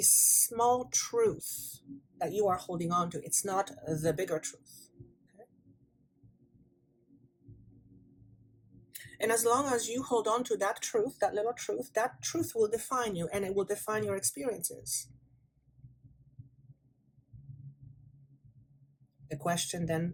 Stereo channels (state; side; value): identical; both; correlation 1.00